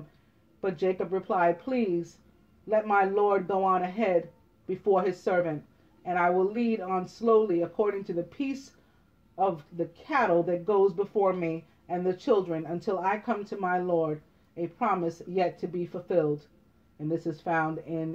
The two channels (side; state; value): both; identical; correlation 1.00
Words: but Jacob replied, please, let my Lord go on ahead before his servant, and I will lead on slowly according to the peace of the cattle that goes before me and the children until I come to my Lord, a promise yet to be fulfilled. And this is found